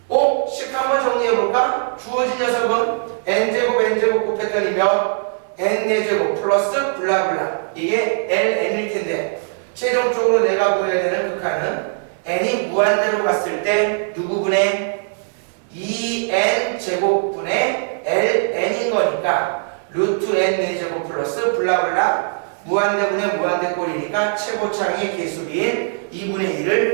식 한번 정리해볼까? 주어진 녀석은 n제곱 곱했더니 몇? n4제곱 플러스 블라블라. 이게 ln일 텐데 최종적으로 내가 구해야 되는 극한은 n이 무한대로 갔을 때 누구분의 2n제곱분의 ln인 거니까 루트 n4제곱 플러스 블라블라 무한대분의 무한대꼴이니까 최고차항의 개수비인 2분의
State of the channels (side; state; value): left; silent; 66 dB below the other